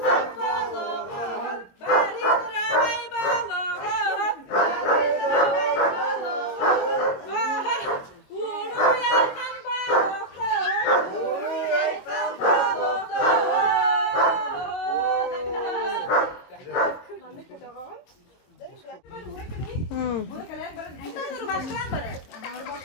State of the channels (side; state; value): right; late; 22 ms